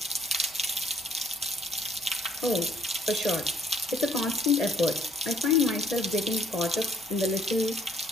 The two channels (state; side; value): normal; both; correlation 0.62